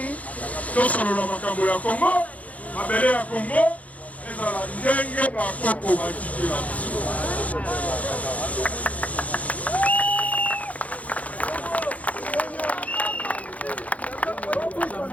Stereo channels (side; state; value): right; late; 0.069 ms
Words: tosolola makambo ya Kongo mabele ya Kongo ezala ndenge bakoko batikela